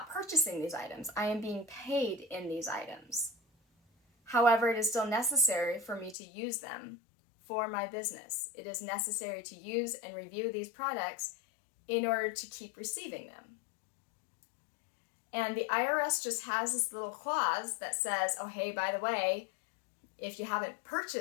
purchasing these items. I am being paid in these items. However, it is still necessary for me to use them for my business. It is necessary to use and review these products in order to keep receiving them. And the IRS just has this little clause that says, oh, hey, by the way, if you haven't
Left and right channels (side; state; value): right; drops out; at 6.2 s